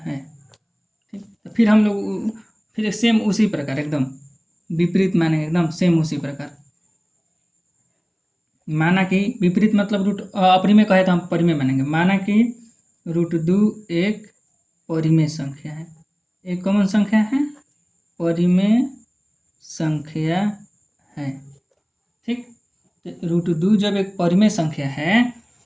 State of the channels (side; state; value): both; identical; correlation 1.00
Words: ठीक, तो फिर हम लोग फिर सेम उसी प्रकार एकदम विपरीत मानेंगे, एकदम सेम उसी प्रकार माना कि विपरीत मतलब रूट अपरिमेय कहे तो हम परिमेय मानेंगे। माना कि √2 एक परिमेय संख्या है, एक कॉमन संख्या है, परिमेय संख्या है। ठीक, √2 जब एक परिमेय संख्या है